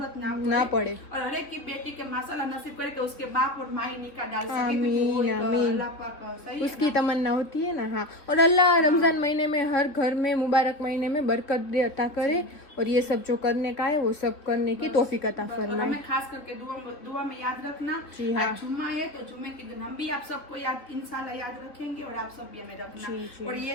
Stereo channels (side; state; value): right; late; 3.3 ms